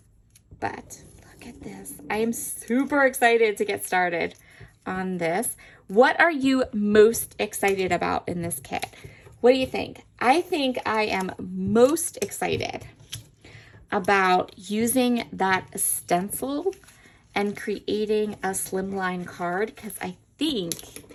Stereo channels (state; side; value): identical; both; correlation 1.00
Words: But look at this. I am super excited to get started on this. What are you most excited about in this kit? What do you think? I think I am most excited about using that stencil and creating a slimline card, because I think,